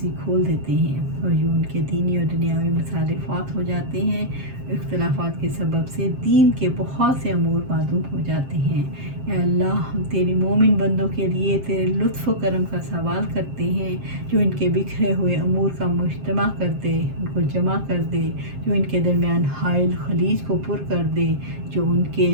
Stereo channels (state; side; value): late; left; 7.5 ms